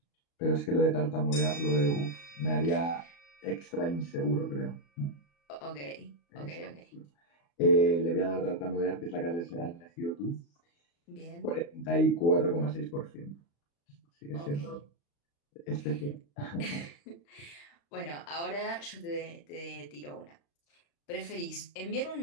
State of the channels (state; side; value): late; right; 35 ms